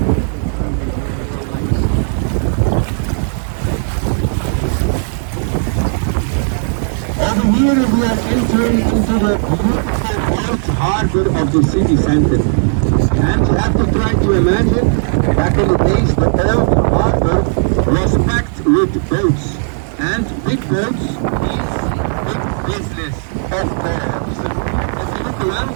Over here we are entering into the beautiful old harbor of the city center. And you have to try to imagine, back in the days, the old harbor was packed with boats. And big boats means big business, of course. If you look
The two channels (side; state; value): left; silent; digital silence